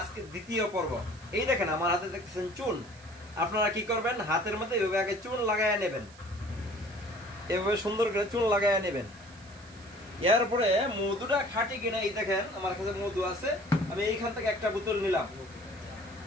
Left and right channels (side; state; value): right; noise; hiss, 23 dB below the sound